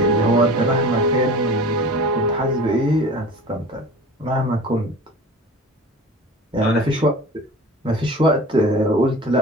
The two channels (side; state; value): both; normal; correlation 0.38